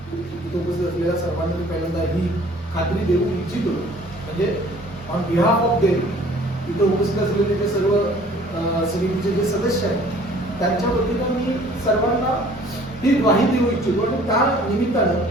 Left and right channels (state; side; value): normal; both; correlation 0.53